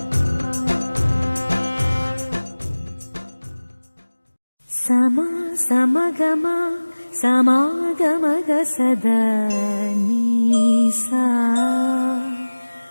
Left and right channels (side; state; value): both; inverted; correlation -1.00